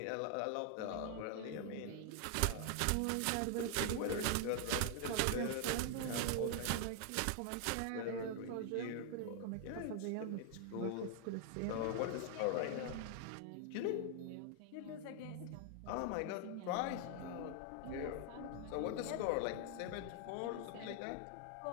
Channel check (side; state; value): both; different; correlation 0.00